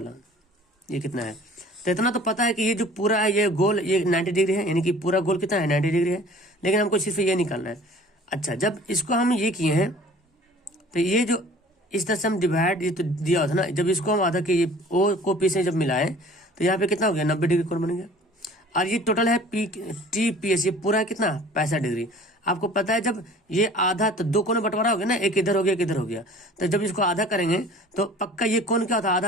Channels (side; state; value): both; normal; correlation 0.47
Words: ये कितना है। तो इतना तो पता है कि ये जो पूरा है ये गोल ये 90 डिग्री है, यानी कि पूरा गोल कितना है 90 डिग्री है, लेकिन हमको सिर्फ ये निकालना है। अच्छा, जब इसको हम ये किए हैं तो ये जो इस तरह से हम डिवाइड, ये तो दिया होता ना, जब इसको हम आधा के ये ओ को पी से जब मिलाए तो यहाँ पे कितना हो गया 90 डिग्री कोण बन गया। और ये टोटल है पी टी पी एस, ये पूरा है कितना 65 डिग्री। आपको पता है जब ये आधा तो दो कोण बंटवारा हो गया ना, एक इधर हो गया एक इधर हो गया, तो जब इसको आधा करेंगे तो पक्का ये कोण क्या होता है, आधा